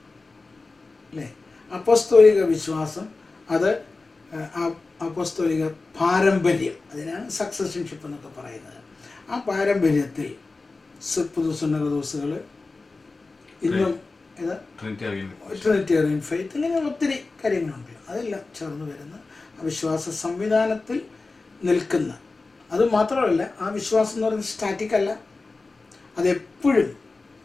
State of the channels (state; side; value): quieter; right; 3.7 dB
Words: അല്ലേ? അപ്പോസ്തോലിക വിശ്വാസം അത് അപ്പോസ്തോലിക പാരമ്പര്യം, അതിനാണ് സക്സഷൻഷിപ്പ് എന്നൊക്കെ പറയുന്നത്. ആ പാരമ്പര്യത്തിൽ പുതുസുന്നകദോസുകൾ ഇന്നും ട്രിനിറ്റേറിയൻ ഫെയ്ത്ത്, ഇങ്ങനെ ഒത്തിരി കാര്യങ്ങളുണ്ട്. അതെല്ലാം ചേർന്ന് വരുന്ന ആ വിശ്വാസ സംവിധാനത്തിൽ നിൽക്കുന്ന, അതുമാത്രമല്ല ആ വിശ്വാസം എന്ന് പറയുന്നത് സ്റ്റാറ്റിക് അല്ല, അതെപ്പോഴും